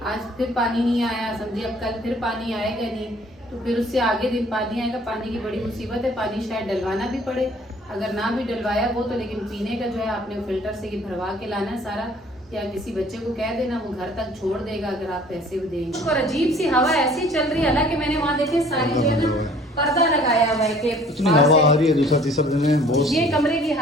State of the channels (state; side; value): normal; both; correlation 0.54